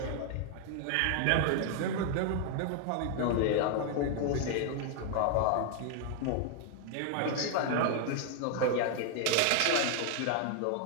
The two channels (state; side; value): different; both; correlation 0.00